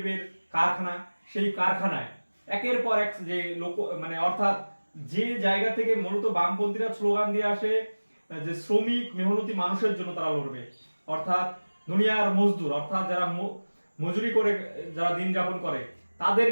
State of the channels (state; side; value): inverted; both; correlation -1.00